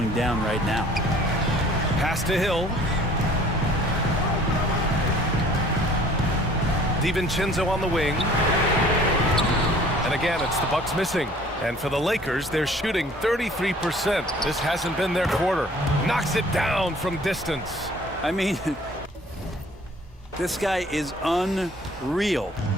down right now. Pass to Hill. DiVincenzo on the wing. And again, it's the Bucks missing. And for the Lakers, they're shooting 33%. This hasn't been their quarter. Knocks it down from distance. I mean, This guy is unreal.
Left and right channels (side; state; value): both; normal; correlation 0.53